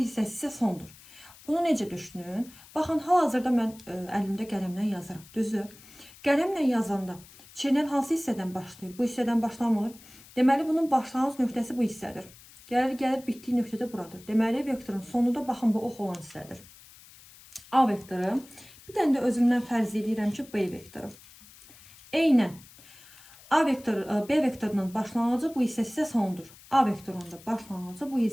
isə sondur. Bunu necə düşünün? Baxın, hal-hazırda mən əlimdə qələmlə yazıram. Düzü, qələmlə yazanda çeynən hansı hissədən başlayır? Bu hissədən başlamır. Deməli, bunun başlanğıc nöqtəsi bu hissədir. Gəlir, bitdiyi nöqtə də buradır. Deməli, vektorun sonu da baxın, bu ox olan hissədir. A vektoru. Bir dənə də özümdən fərz edirəm ki, B vektoru. Eynən. B vektorunun başlanğıcı bu hissəsi isə sondur. A vektorunun da başlanğıcı bu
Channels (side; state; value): left; noise; hiss, 22 dB below the sound